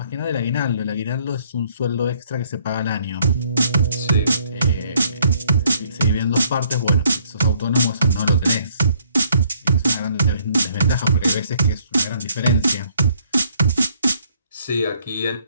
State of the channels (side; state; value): both; inverted; correlation -0.65